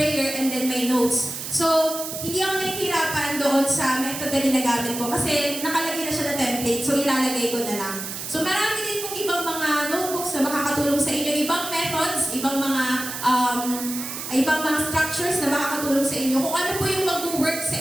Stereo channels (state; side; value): noise; right; hiss, 7 dB below the sound